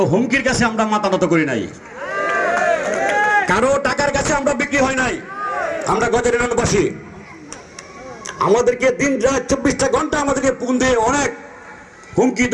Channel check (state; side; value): identical; both; correlation 1.00